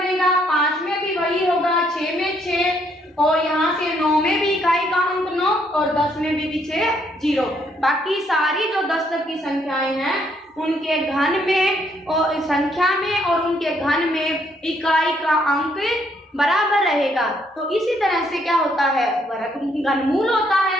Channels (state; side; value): normal; both; correlation 0.70